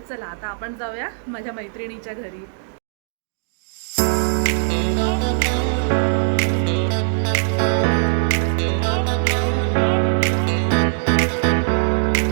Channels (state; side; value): silent; left; digital silence